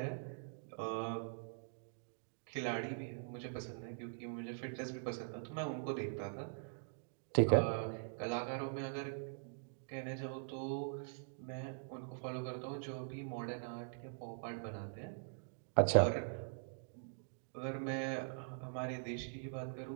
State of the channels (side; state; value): left; silent; digital silence